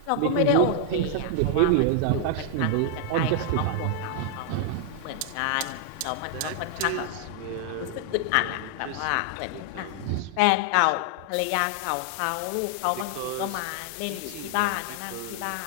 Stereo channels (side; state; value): both; different; correlation 0.00